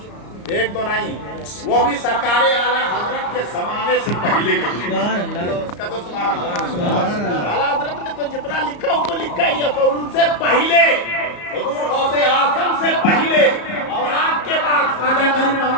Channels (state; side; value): late; right; 34 ms